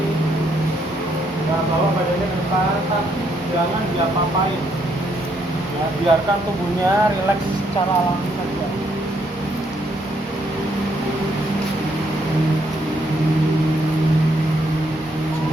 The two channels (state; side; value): normal; both; correlation 0.73